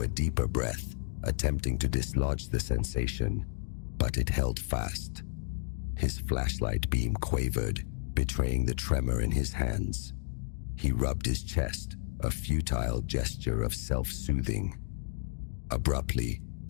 a deeper breath, attempting to dislodge the sensation, but it held fast. His flashlight beam quavered, betraying the tremor in his hands. He rubbed his chest, a futile gesture of self-soothing. Abruptly,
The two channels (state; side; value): silent; right; digital silence